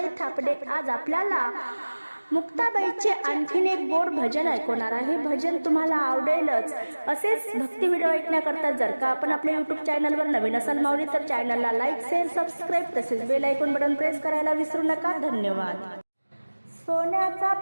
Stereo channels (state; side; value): inverted; both; correlation -1.00